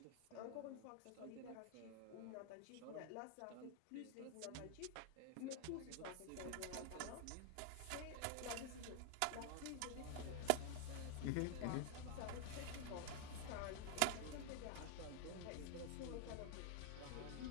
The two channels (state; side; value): different; both; correlation 0.00